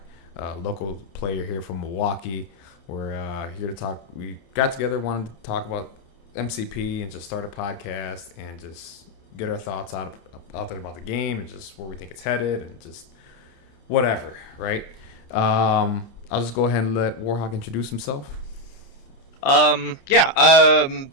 a local player here from Milwaukee. We're here to talk. We got together, wanted to talk about MCP and just start a podcast and just get our thoughts out there about the game and just where we think it's headed and just whatever, right? I'll just go ahead and let Warhawk introduce himself.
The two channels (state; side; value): late; right; 30 ms